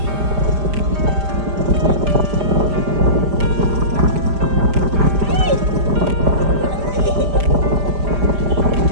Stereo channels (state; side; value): late; left; 5.0 ms